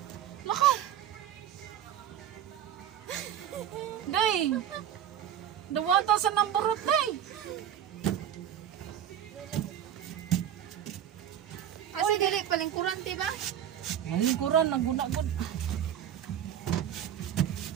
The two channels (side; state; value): left; quieter; 10.2 dB